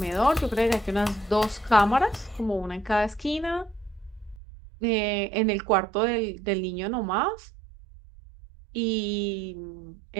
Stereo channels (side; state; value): left; drops out; at 4.4 s